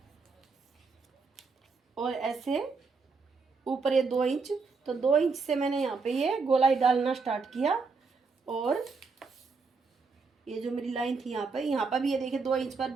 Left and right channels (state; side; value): quieter; left; 4.5 dB